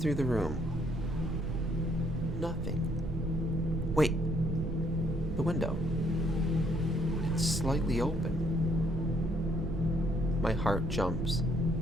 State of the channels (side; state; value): right; noise; rumble, 5 dB below the sound